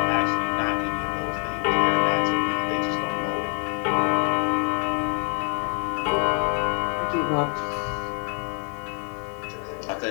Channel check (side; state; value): right; quieter; 35.8 dB